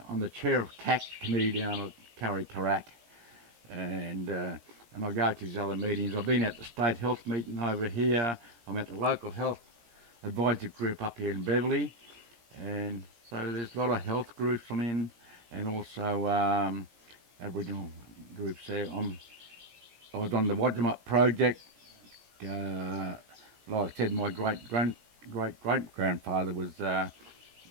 I'm the chair of CAC committee down at Curry Karak, and I go to these other meetings. I've been at the state health meeting over here. I'm at the local health advisory group up here in Beverley, and so there's a lot of health groups I'm in, and also Aboriginal groups there. I was on the Wadjamup project. Like I said, my great grandfather was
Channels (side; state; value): left; late; 17 ms